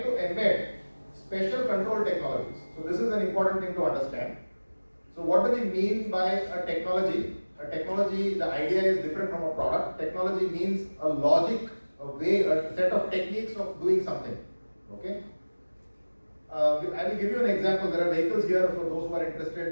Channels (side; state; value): both; inverted; correlation -1.00